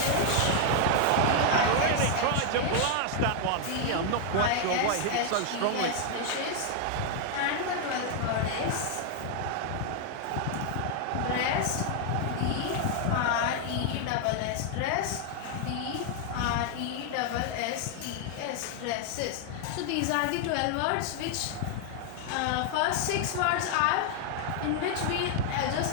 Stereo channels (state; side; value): different; both; correlation 0.00